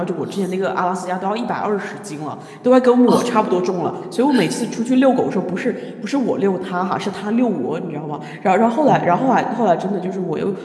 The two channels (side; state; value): both; identical; correlation 1.00